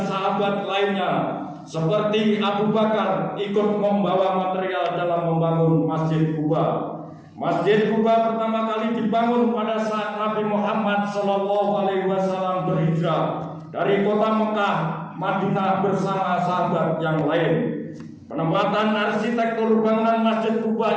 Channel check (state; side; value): identical; both; correlation 1.00